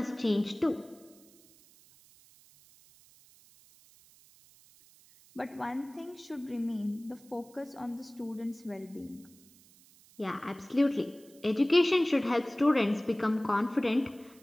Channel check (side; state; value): right; noise; hiss, 26 dB below the sound